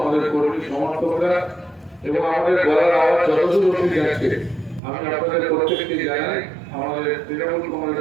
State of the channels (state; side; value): drops out; left; at 4.8 s